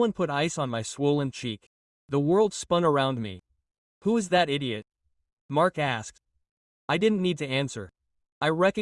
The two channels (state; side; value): identical; both; correlation 1.00